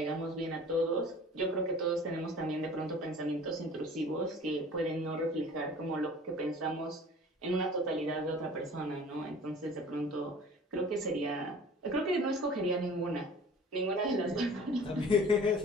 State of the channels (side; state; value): both; normal; correlation 0.45